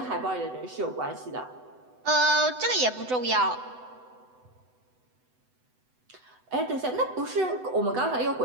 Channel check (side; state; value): left; late; 8.0 ms